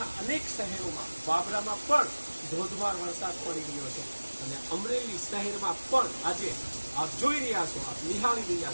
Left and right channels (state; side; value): inverted; both; correlation -1.00